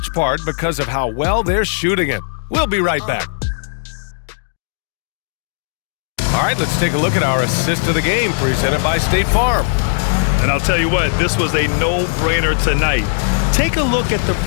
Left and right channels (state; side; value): silent; right; digital silence